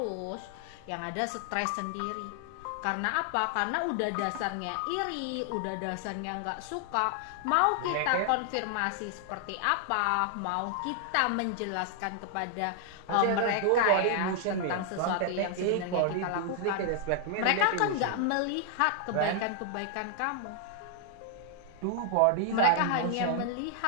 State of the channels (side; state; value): both; different; correlation 0.00